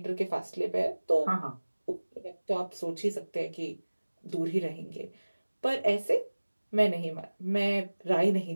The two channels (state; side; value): inverted; both; correlation -1.00